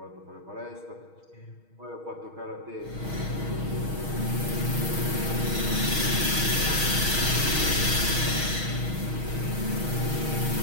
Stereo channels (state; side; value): late; left; 6.3 ms